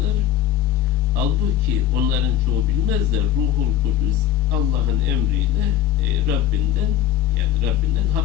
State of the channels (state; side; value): quieter; right; 11.1 dB